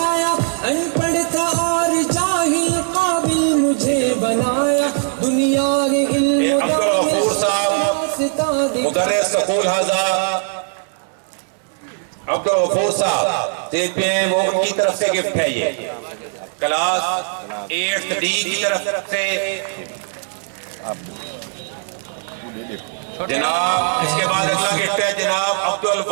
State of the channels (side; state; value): left; silent; 62 dB below the other